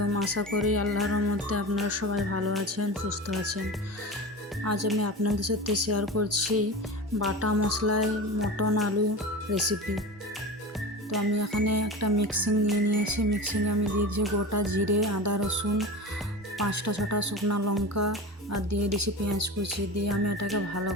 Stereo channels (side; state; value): both; normal; correlation 0.29